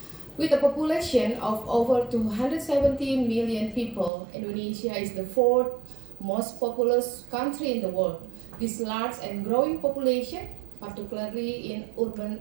With a population of over 270 million people, Indonesia is the fourth most populous country in the world. This large and growing population, particularly in urban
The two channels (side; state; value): left; drops out; at 4.1 s